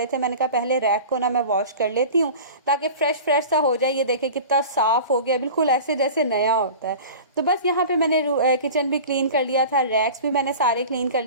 थे। मैंने कहा पहले रैक को ना मैं वॉश कर लेती हूँ ताकि फ्रेश सा हो जाए। ये देखे कितना साफ़ हो गया, बिल्कुल ऐसे जैसे नया होता है। तो बस यहाँ पे मैंने किचन भी क्लीन कर लिया था, रैक्स भी मैंने सारे क्लीन कर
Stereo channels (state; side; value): inverted; both; correlation -0.37